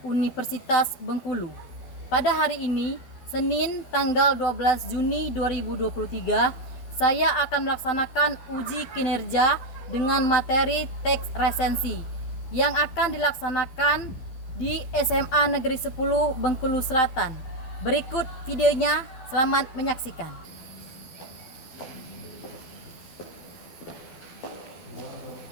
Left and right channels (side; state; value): right; late; 12 ms